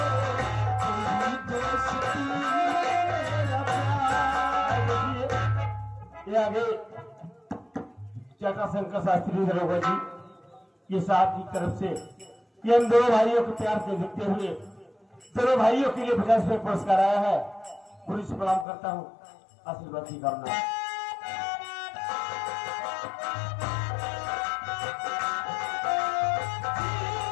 तेरी दोस्ती मेरा प्यार। ये आगे जटाशंकर शास्त्री दरोगा जी ये साहब की तरफ से ये इन दोनों भाइयों को प्यार से देखते हुए दोनों भाइयों के लिए 50 रुपये पुरस्कार आया है। पूरी से प्रणाम करता हूँ, आशीर्वाद की कामना।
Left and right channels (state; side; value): drops out; right; at 18.7 s